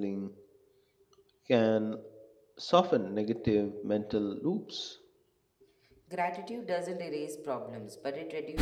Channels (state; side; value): identical; both; correlation 1.00